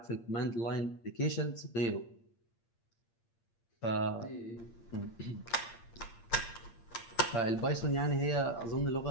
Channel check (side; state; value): right; late; 8.7 ms